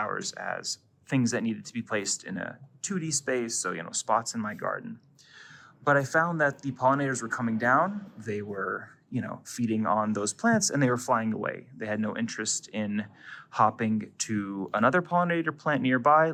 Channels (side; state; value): both; identical; correlation 1.00